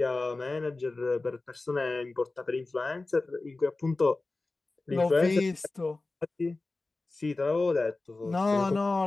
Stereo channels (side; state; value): right; quieter; 3.3 dB